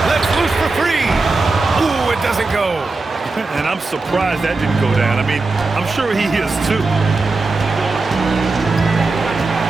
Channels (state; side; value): quieter; left; 3.6 dB